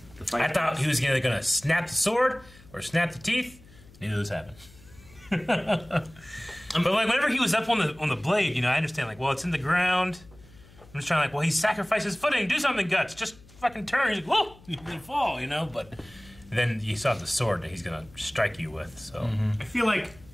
the fight. I thought he was either going to snap the sword or snap the teeth. Neither of those happened. But like whenever he was up on the blade, you know, I understand, like, well, it's in the ground. I'm just trying, like, well, he sacrificed his footing. Do something, Guts. Just fucking turn. He's like, whoa, he's gonna fall, you know. But then you saw the sword that he's gonna strike you with. So I feel like.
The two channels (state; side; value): noise; left; hum, 24 dB below the sound